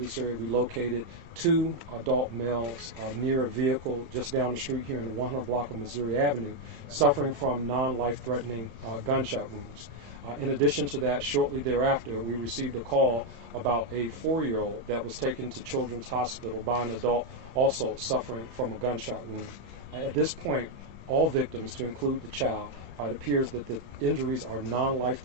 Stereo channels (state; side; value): late; left; 31 ms